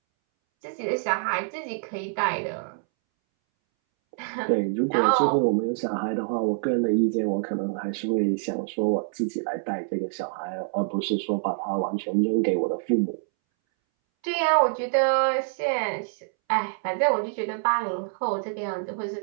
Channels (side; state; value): left; silent; 61 dB below the other